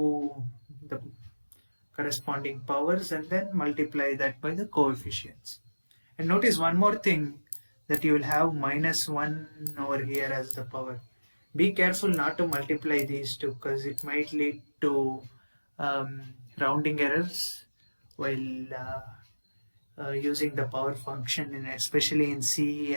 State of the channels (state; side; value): inverted; both; correlation -1.00